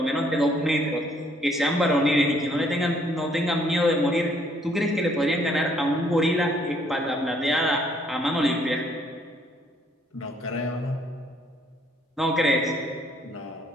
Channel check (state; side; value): normal; both; correlation 0.65